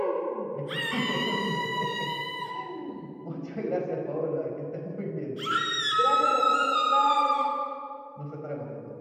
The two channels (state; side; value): identical; both; correlation 1.00